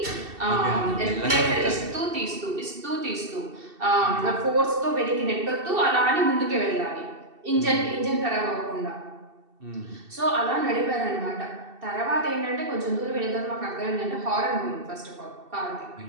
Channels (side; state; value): left; late; 2.7 ms